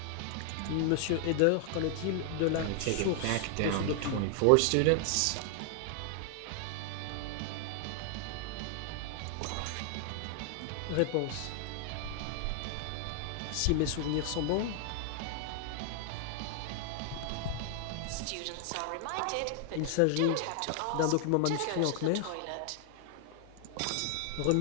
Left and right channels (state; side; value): different; both; correlation 0.00